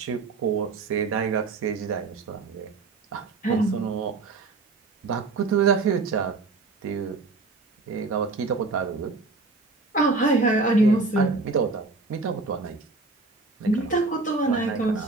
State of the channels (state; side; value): quieter; left; 3.7 dB